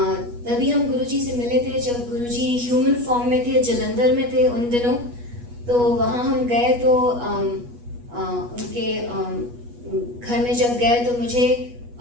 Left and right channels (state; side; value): late; left; 8.3 ms